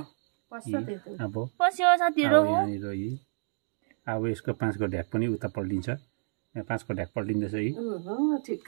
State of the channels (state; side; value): silent; left; 58 dB below the other